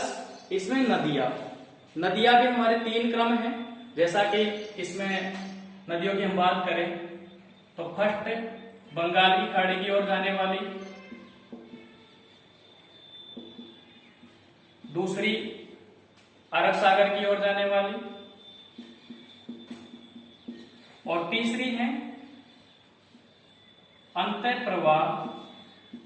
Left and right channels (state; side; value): identical; both; correlation 1.00